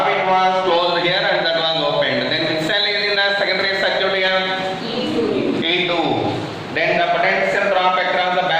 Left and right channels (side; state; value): both; identical; correlation 1.00